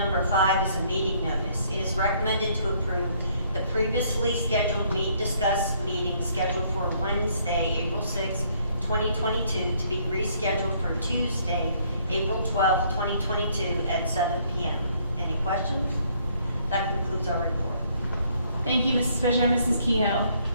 5 is a meeting notice. It is recommended to approve the previously scheduled discuss meeting scheduled for Wednesday, April 6th, 2022, to be rescheduled for Tuesday, April 12th, 2022 at 7 p.m. Any questions? That concludes our report. Thank you, Mrs. Fisher and Mrs. Kehoe.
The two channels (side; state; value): both; inverted; correlation -0.66